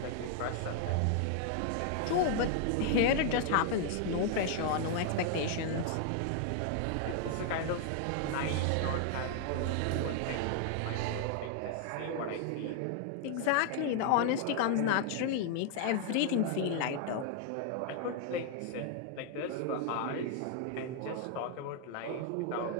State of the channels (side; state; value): both; different; correlation 0.00